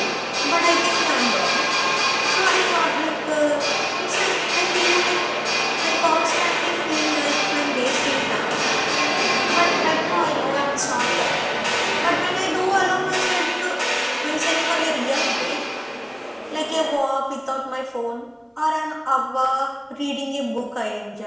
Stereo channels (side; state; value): both; identical; correlation 1.00